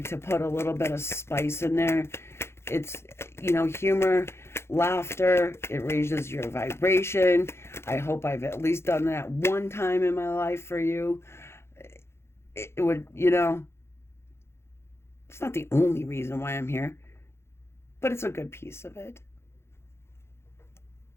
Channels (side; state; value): right; late; 0.12 ms